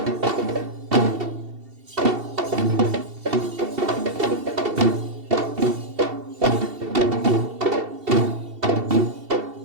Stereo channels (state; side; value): late; left; 2.7 ms